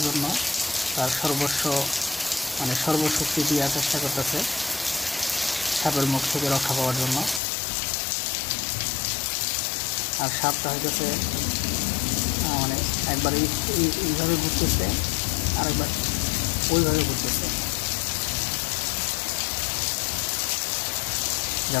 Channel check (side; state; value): right; drops out; at 7.4 s